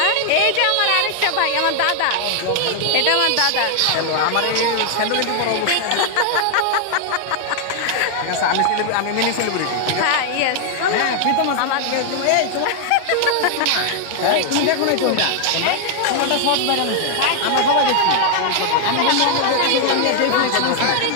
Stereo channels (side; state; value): both; different; correlation 0.00